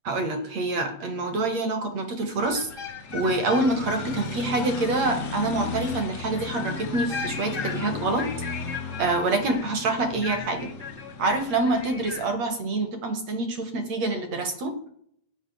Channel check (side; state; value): left; late; 8.6 ms